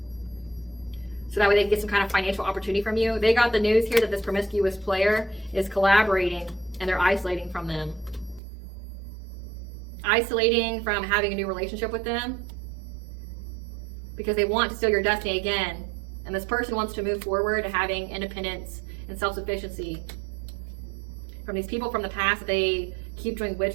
So that way they can get some kind of financial opportunity from you. They got the news here that this promiscuous player is collaborating and they're isolating from them. Isolating from having a new relationship with them because they want to steal your destiny again. And this person wants to move forward to having independence and self-sufficiency from these people from the past. They keep doing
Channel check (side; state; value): left; drops out; at 8.4 s